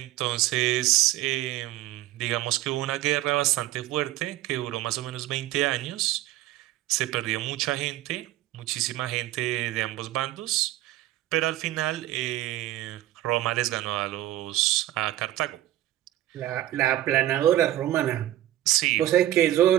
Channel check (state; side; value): quieter; left; 14.4 dB